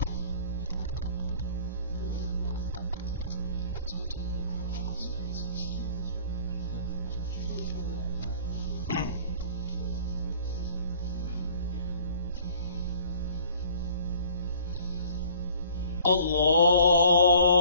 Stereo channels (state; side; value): inverted; both; correlation -0.51